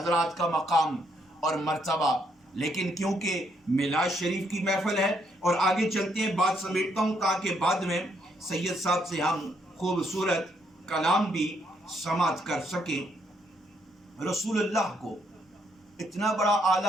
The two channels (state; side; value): normal; both; correlation 0.73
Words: کا مقام اور مرتبہ، لیکن کیونکہ میلاد شریف کی محفل ہے اور آگے چلتے ہیں، بات سمیٹتا ہوں تاکہ بعد میں سید صاحب سے ہم خوبصورت کلام بھی سماعت کر سکیں۔ رسول اللہ کو اتنا بڑا